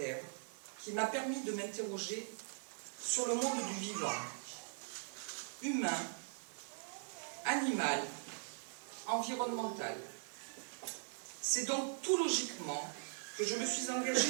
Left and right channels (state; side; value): silent; left; digital silence